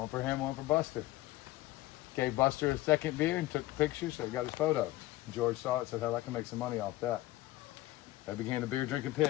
for him, one for Buster. Gave Buster a second beer and took the picture, so he got his photo. George saw it and said, hell, I can make some money off that. That began the beer drinking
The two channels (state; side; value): quieter; right; 17.4 dB